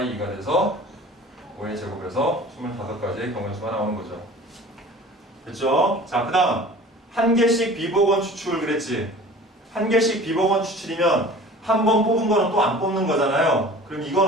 2가 돼서 5의 제곱에서 25가지의 경우의 수가 나오는 거죠. 됐죠? 자, 그 다음 한 개씩 비복원 추출 그랬지? 한 개씩 비복원 추출이면 한 번 뽑은 거는 또 안 뽑는 거잖아요. 그럼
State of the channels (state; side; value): normal; both; correlation 0.43